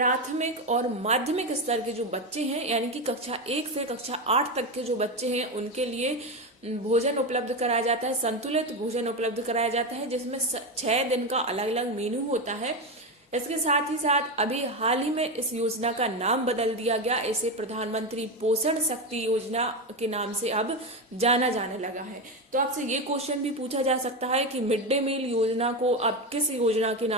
और माध्यमिक स्तर के जो बच्चे हैं यानी कि कक्षा 1 से कक्षा 8 तक के जो बच्चे हैं उनके लिए भोजन उपलब्ध कराया जाता है, संतुलित भोजन उपलब्ध कराया जाता है जिसमें 6 दिन का अलग अलग मेनू होता है। इसके साथ ही साथ अभी हाल ही में इस योजना का नाम बदल दिया गया, इसे प्रधानमंत्री पोषण शक्ति योजना के नाम से अब जाना जाने लगा है। तो आपसे ये क्वेश्चन भी पूछा जा सकता है कि मिड डे मील योजना को अब किस योजना के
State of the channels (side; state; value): both; normal; correlation 0.15